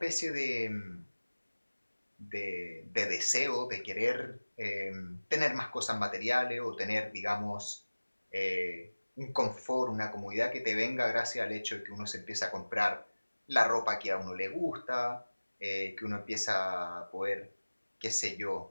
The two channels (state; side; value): inverted; both; correlation -1.00